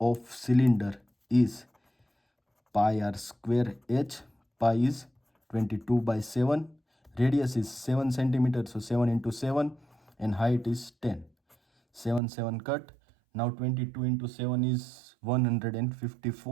cylinder is pi r square h. Pi is 22/7, radius is 7 centimetre, so 7 into 7 and height is 10. 7 7 cut. Now 22 into 7 is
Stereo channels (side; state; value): left; drops out; at 12.2 s